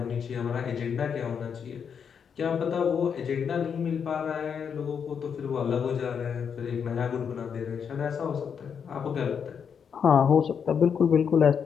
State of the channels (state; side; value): quieter; right; 7.1 dB